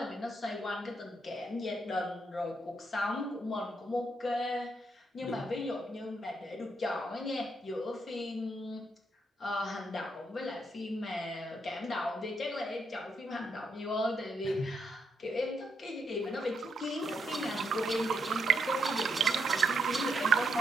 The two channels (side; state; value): both; normal; correlation 0.78